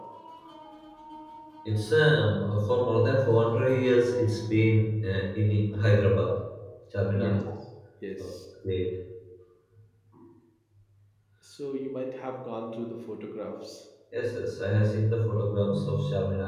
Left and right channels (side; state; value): both; identical; correlation 1.00